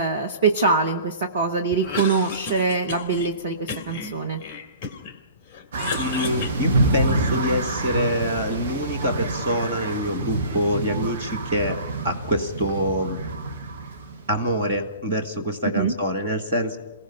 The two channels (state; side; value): inverted; both; correlation -0.43